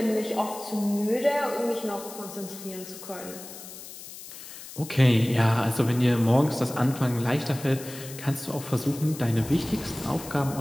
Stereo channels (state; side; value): noise; left; hiss, 14 dB below the sound